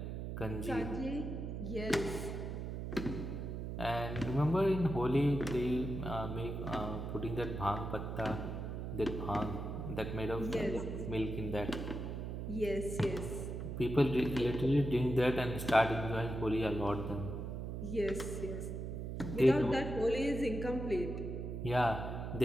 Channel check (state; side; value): noise; right; hum, 5 dB below the sound